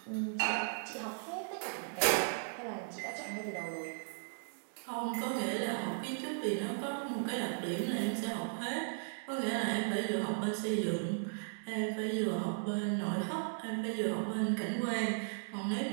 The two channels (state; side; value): silent; left; digital silence